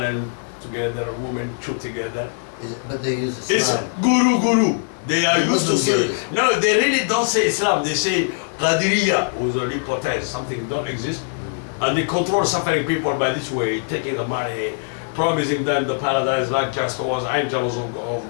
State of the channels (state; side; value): silent; right; digital silence